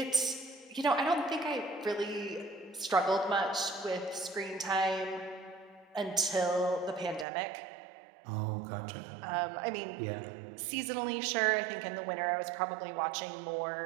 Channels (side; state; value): left; drops out; at 7.2 s